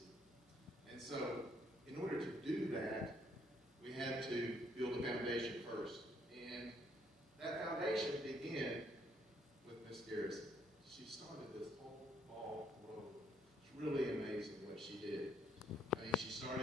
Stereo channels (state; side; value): normal; both; correlation 0.69